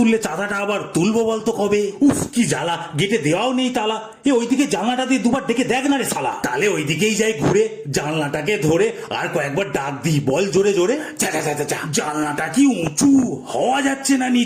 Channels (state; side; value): identical; both; correlation 1.00